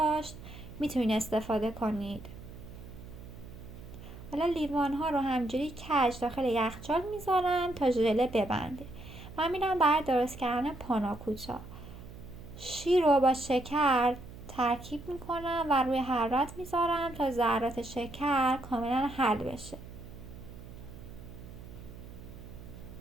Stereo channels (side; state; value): right; noise; hum, 15 dB below the sound